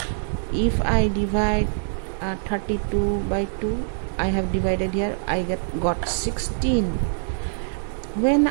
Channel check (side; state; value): left; silent; digital silence